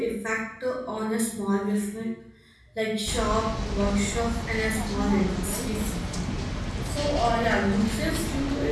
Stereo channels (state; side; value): identical; both; correlation 1.00